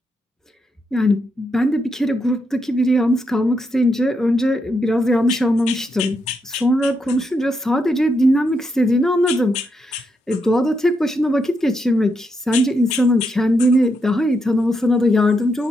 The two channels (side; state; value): both; normal; correlation 0.81